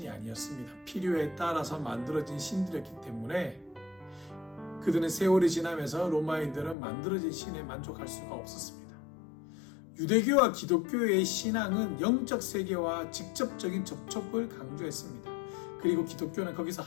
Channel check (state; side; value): drops out; right; at 6.8 s